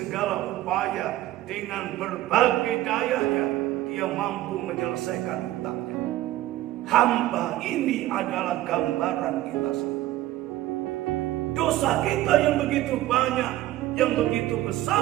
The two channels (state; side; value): quieter; left; 15.2 dB